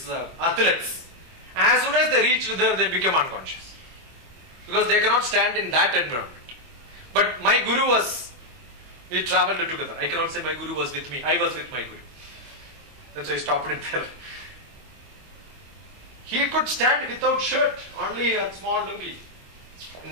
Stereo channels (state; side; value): late; left; 24 ms